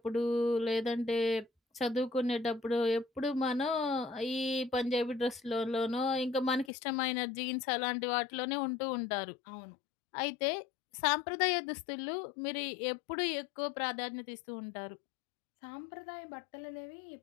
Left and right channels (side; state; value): right; drops out; at 6.7 s